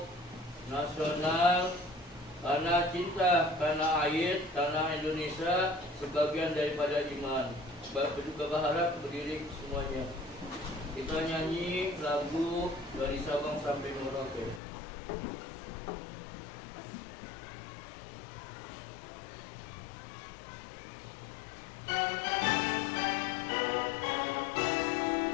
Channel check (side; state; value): right; drops out; at 14.6 s